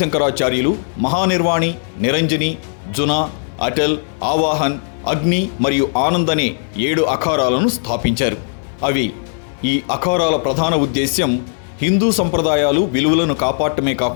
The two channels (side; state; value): right; silent; digital silence